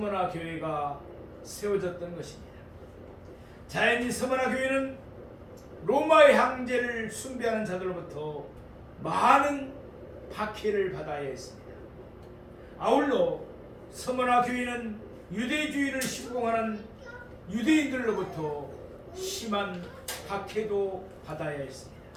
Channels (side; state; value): both; identical; correlation 1.00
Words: 교회가 세워졌던 것입니다. 자연히 서머나 교회는 로마의 황제를 숭배하는 자들로부터 많은 박해를 받아야 했습니다. 아울러 서머나 교회는 유대주의를 신봉하는 유대인들로부터 심한 박해도 받아야 했습니다.